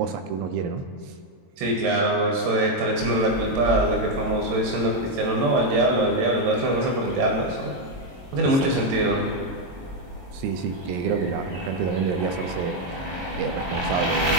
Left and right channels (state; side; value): late; left; 22 ms